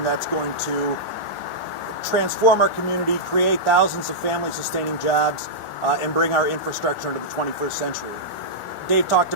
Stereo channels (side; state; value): right; late; 1.4 ms